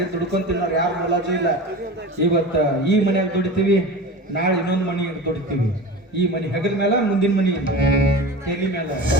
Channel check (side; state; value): both; normal; correlation 0.32